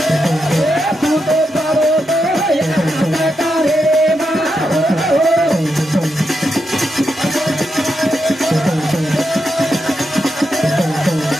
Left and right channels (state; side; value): normal; both; correlation 0.85